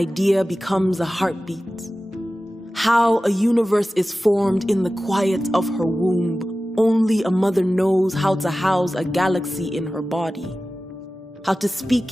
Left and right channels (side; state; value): both; normal; correlation 0.95